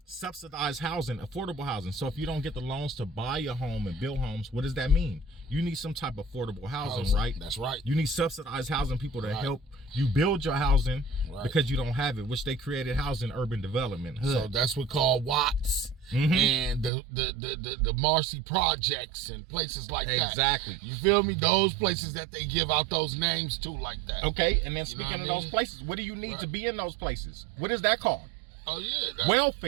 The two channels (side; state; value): left; drops out; at 16.9 s